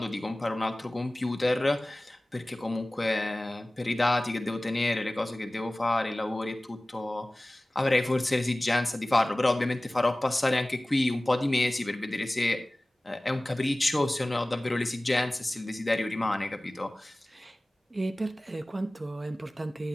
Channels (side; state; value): both; normal; correlation 0.98